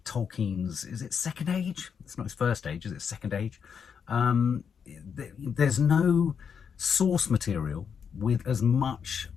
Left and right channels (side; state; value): right; quieter; 6.9 dB